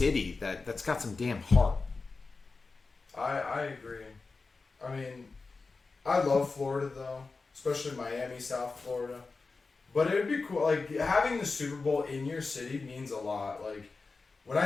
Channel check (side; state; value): right; quieter; 4.1 dB